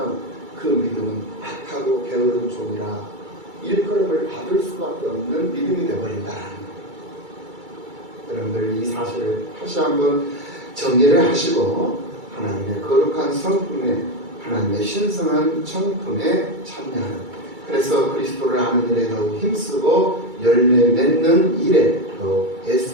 그 믿음은 악하고 게으른 종이라 일컬음을 받을 수밖에 없는 믿음이 되어버린다는 거예요. 여러분들 이 사실을 다시 한번 정리를 하시고 하나님의 거룩한 성품에 하나님의 신성한 성품에 참여하는 그래서 그리스도를 아는 일에 더욱 힘쓰고 열매 맺는 일에 더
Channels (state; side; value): late; left; 2.3 ms